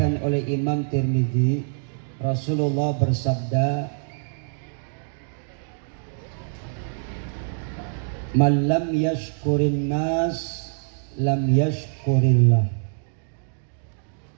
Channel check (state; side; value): silent; left; digital silence